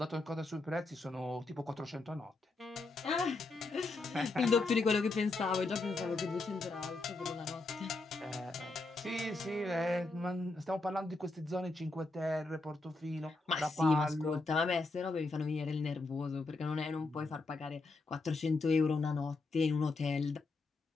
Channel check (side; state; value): right; quieter; 3.4 dB